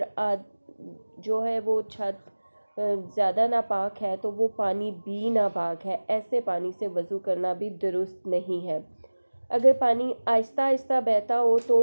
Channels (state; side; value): inverted; both; correlation -1.00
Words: جو ہے وہ چھت زیادہ ناپاک ہے تو وہ پانی بھی ناپاک ہے، ایسے پانی سے وضو کرنا بھی درست نہیں ہے۔ اگر پانی آہستہ آہستہ بہتا ہو تو